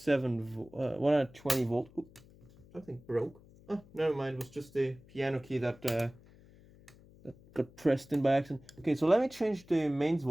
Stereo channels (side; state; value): left; noise; hum, 24 dB below the sound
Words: volt. Oops, something broke. Oh, never mind. It was just the piano key that got pressed in by accident. Okay, so let me change the mains